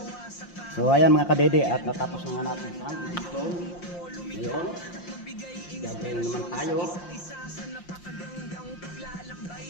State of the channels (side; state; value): right; late; 5.7 ms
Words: So ayan mga kadede, at natapos na nga natin sa dito. Ngayon, gagawin naman tayo. isa sa napakagandang paglalakbay